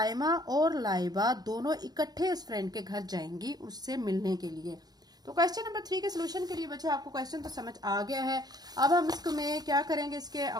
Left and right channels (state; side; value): late; left; 0.19 ms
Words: और लाइबा दोनों इकट्ठे उस फ्रेंड के घर जाएंगी उससे मिलने के लिए। तो क्वेश्चन नंबर 3 के सोल्यूशन के लिए बच्चों आपको क्वेश्चन तो समझ आ गया है। अब हम इसको में क्या करेंगे, इसके